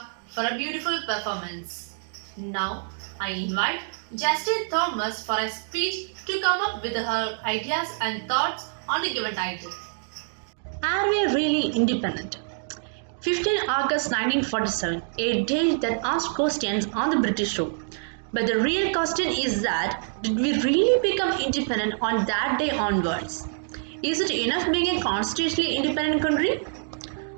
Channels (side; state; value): left; silent; digital silence